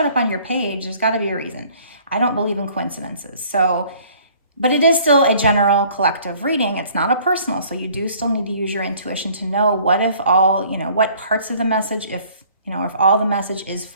up on your page, there's got to be a reason. I don't believe in coincidences. So, but it is still a general collective reading. It's not a personal. So you do still need to use your intuition to know what if all, you know, what parts of the message, if all the message is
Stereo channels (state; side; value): inverted; both; correlation -0.55